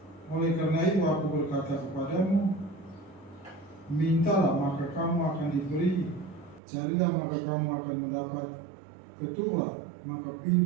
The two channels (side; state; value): left; drops out; at 6.6 s